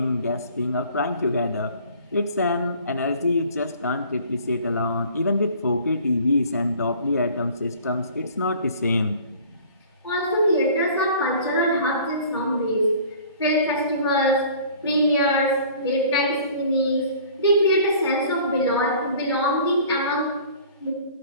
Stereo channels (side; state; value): both; inverted; correlation -0.49